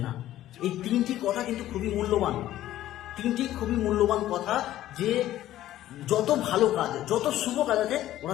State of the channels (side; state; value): right; quieter; 13.7 dB